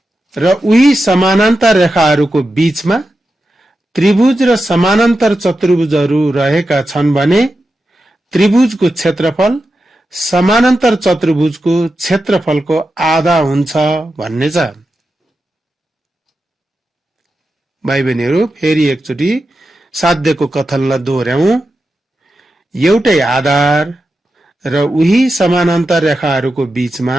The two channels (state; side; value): normal; both; correlation 0.90